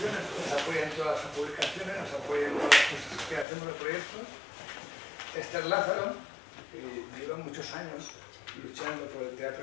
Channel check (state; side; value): drops out; right; at 3.5 s